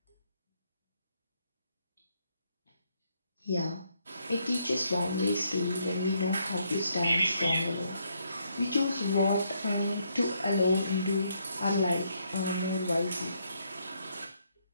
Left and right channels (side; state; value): both; inverted; correlation -0.74